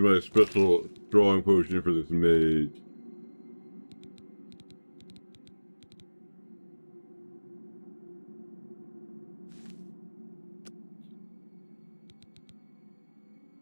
my special strong potion for this mage.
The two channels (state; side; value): inverted; both; correlation -1.00